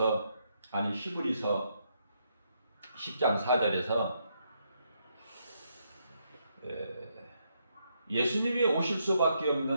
히브리서 10장 4절에서 예수님이 오실 수밖에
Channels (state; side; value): inverted; both; correlation -0.77